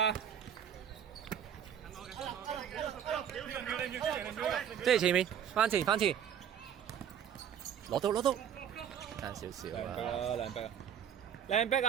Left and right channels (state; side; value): quieter; left; 9.0 dB